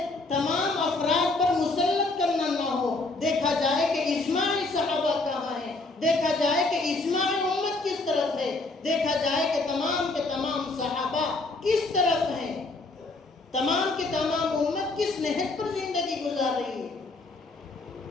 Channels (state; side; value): quieter; right; 3.2 dB